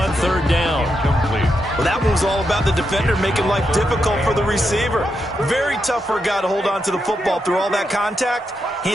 3rd down. Well, that one was all about the defender making life difficult for the receiver. Very tough for a guy to hold on to the football through all that contact. He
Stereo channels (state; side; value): normal; both; correlation 0.84